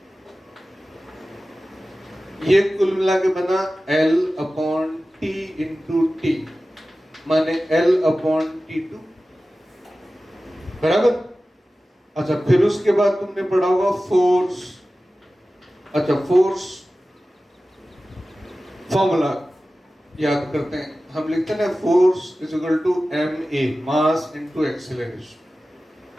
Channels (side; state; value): both; normal; correlation 0.96